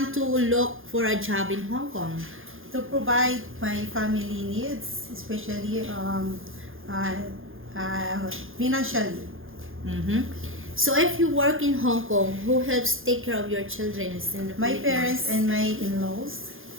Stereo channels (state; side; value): late; left; 0.59 ms